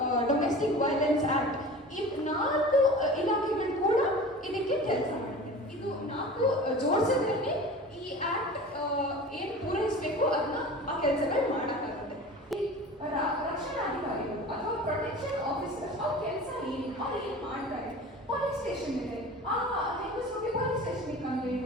domestic violence act, ಈ 4 ಇಲಾಖೆಗಳು ಕೂಡ ಇದಕ್ಕೆ ಕೆಲಸ ಮಾಡುತ್ತೆ. ಇದು 4 ಜೋಡಿಸಿದ್ರೆ ಈ ಆಕ್ಟ್ ಏನು ಪೂರೈಸಬೇಕು ಅದನ್ನ ಆ ಕೆಲಸಗಳು ಮಾಡಕ್ಕಾಗುತ್ತೆ. ರಕ್ಷಣಾಧಿಕಾರಿಗಳು ಅಥವಾ ಪ್ರೊಟೆಕ್ಷನ್ ಆಫೀಸರ್ ಅವ್ರ ಕೆಲಸ ಏನು, ಅವ್ರು ಏನು ಮಾಡ್ತಾರೆ? ಪೊಲೀಸ್ ಸ್ಟೇಷನ್ ಇದೆ, ಆ ಹೆಂಗಸರಿಗೆ ಪೊಲೀಸ್ ಸ್ಟೇಷನ್ಗೆ ಕಂಪ್ಲೇಂಟ್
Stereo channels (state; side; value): normal; both; correlation 0.37